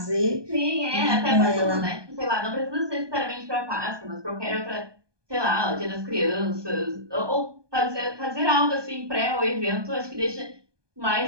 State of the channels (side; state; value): left; late; 1.2 ms